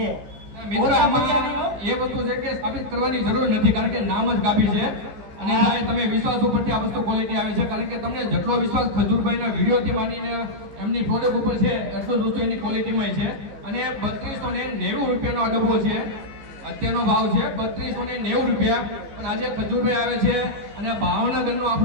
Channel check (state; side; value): late; left; 14 ms